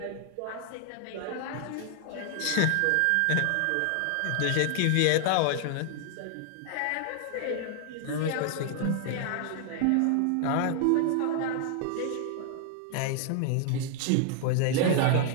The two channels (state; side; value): different; both; correlation 0.00